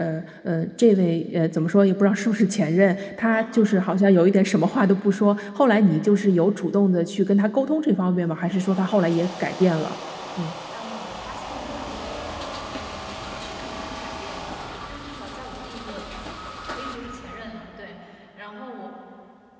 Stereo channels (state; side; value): identical; both; correlation 1.00